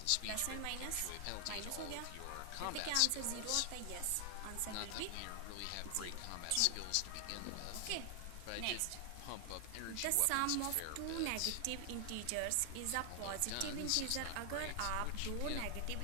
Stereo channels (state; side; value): different; both; correlation 0.00